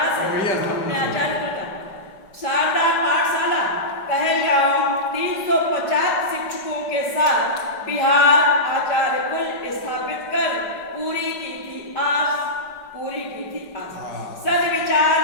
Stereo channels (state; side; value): late; right; 5.1 ms